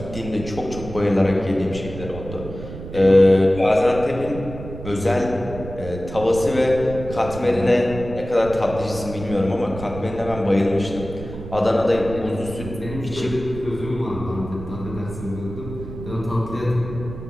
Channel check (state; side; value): noise; right; rumble, 11 dB below the sound